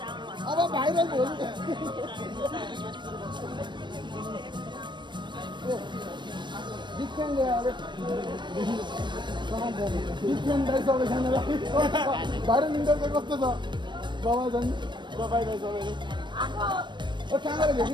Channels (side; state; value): left; late; 0.22 ms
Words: अब भाइरल भयो डिफरेंट यार डिफरेंट दाइ सबैजनालाई भाइरल इन्टर चाहिँ कस्तो छ बाबा जन बाबाइ दाइ सबैले ओ कहाँ गएर